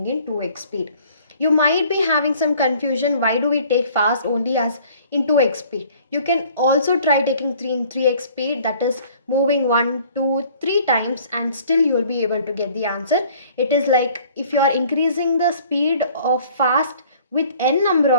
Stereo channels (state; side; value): inverted; both; correlation -0.54